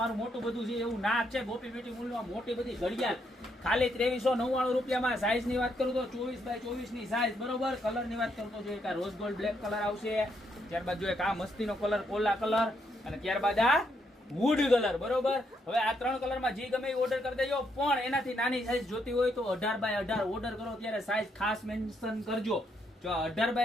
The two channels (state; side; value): normal; both; correlation 0.76